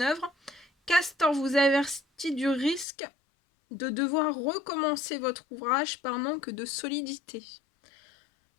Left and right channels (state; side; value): drops out; right; at 2.9 s